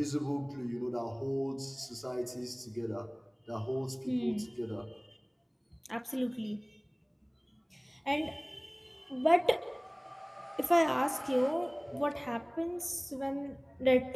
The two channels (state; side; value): identical; both; correlation 1.00